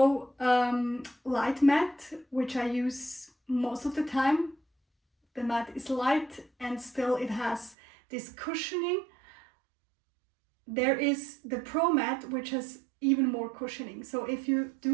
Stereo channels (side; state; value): left; drops out; at 7.8 s